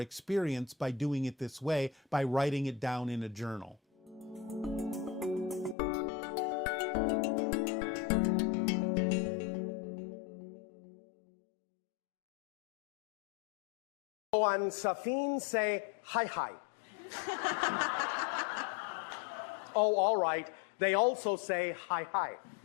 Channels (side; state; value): right; drops out; at 5.8 s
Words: by doing it this way, by writing it down in a journal. And Safin say hi hi. Oh, all right. They also say hi, hi.